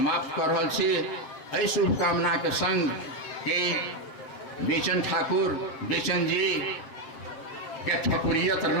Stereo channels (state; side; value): late; right; 7.5 ms